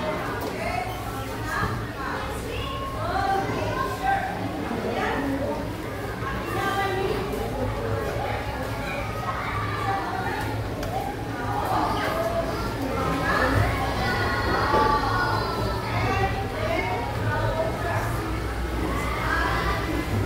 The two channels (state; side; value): identical; both; correlation 1.00